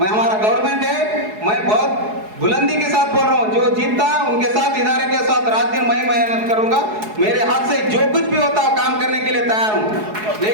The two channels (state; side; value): late; left; 4.7 ms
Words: हमारा गवर्नमेंट है, मैं बहुत बुलंदी के साथ बोल रहा हूँ, जो जीतता उनके साथ, इदारे के साथ रात दिन मैं मेहनत करूंगा। मेरे हाथ से जो कुछ भी होता है काम करने के लिए लिए तैयार हूँ,